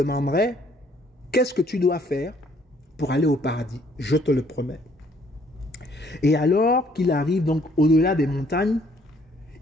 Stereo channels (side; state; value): both; normal; correlation 0.64